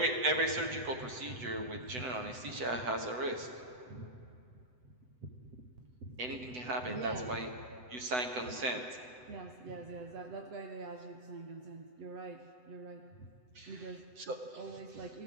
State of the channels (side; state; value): left; late; 8.0 ms